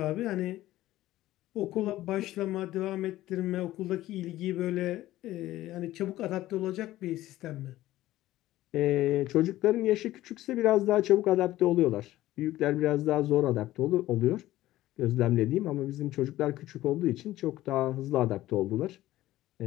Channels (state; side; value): quieter; right; 15.4 dB